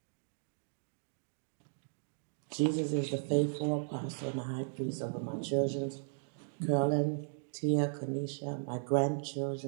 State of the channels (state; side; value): silent; left; digital silence